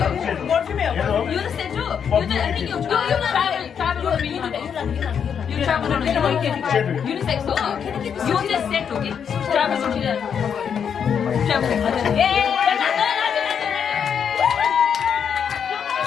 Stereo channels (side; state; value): right; quieter; 7.5 dB